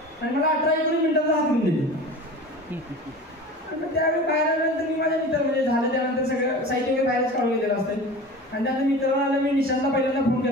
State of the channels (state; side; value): normal; both; correlation 0.36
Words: आणि मला 18-19 मिनिटांचा हात करून दिली. त्यावेळी बाहेर आल्यानंतर मी माझ्या मित्र म्हणजे झालं त्यानंतर सगळं साहित्य वगैरे बाहेरच काढून गेलेलं असतं आणि त्यानंतर मित्रांना आलं, मी निशांतला पहिल्यांदा फोन